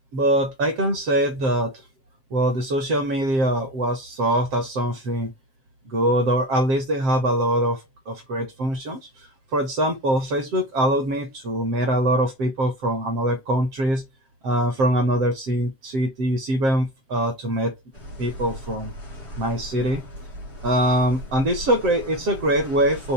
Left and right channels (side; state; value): left; late; 7.5 ms